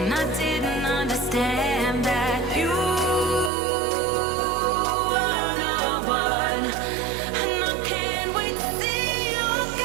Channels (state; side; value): drops out; left; at 3.5 s